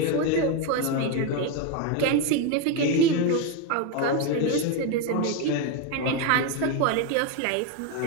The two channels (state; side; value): different; both; correlation 0.02